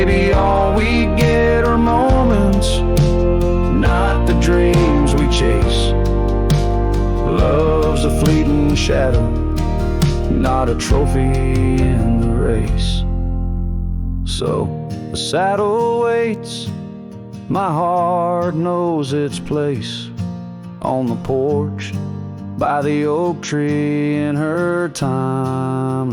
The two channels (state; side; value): identical; both; correlation 1.00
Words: all we get are moments, not the dreams we chase. Love's a fleeting shadow, not a trophy in the race. So the saddle waits, my heart knows its place on the porch by the oak tree in her